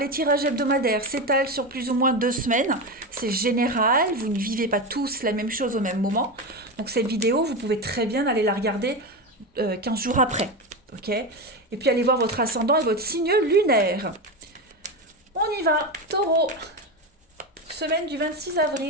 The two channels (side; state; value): both; normal; correlation 0.18